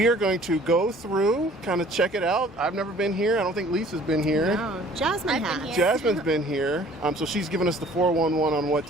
are going to go through, kind of check it out. I've never been here. I don't think Lisa's been here. No, Jasmine has. Jasmine's been here. So she's given us the 411 on what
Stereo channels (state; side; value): normal; both; correlation 0.53